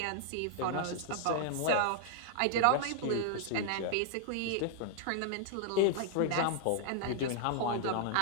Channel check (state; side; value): different; both; correlation 0.00